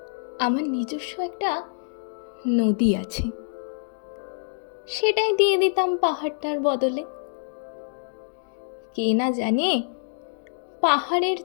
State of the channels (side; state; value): right; silent; digital silence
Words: আমার নিজস্ব একটা নদী আছে, সেটাই দিয়ে দিতাম পাহাড়টার বদলে। কে না জানে পাহাড়ের